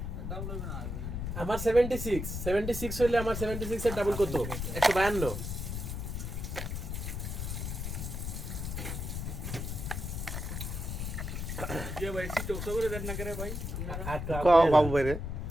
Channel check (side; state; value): left; noise; rumble, 4 dB below the sound